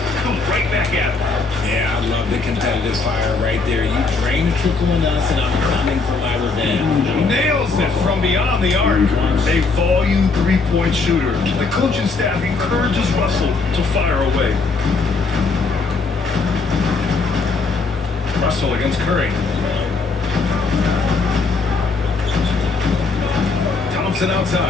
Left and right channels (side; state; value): right; quieter; 4.1 dB